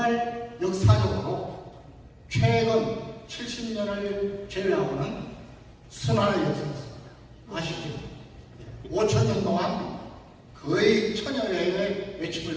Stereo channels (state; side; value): identical; both; correlation 1.00